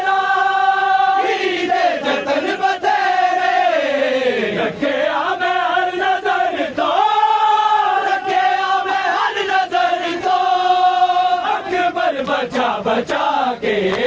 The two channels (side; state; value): both; identical; correlation 1.00